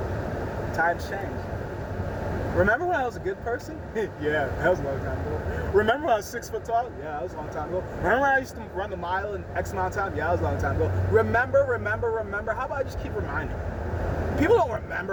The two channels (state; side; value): identical; both; correlation 1.00